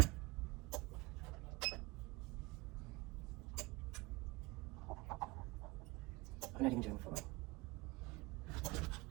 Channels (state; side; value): quieter; left; 23.5 dB